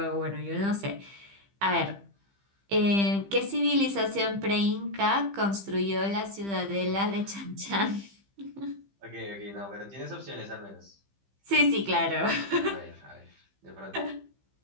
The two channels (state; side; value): late; left; 15 ms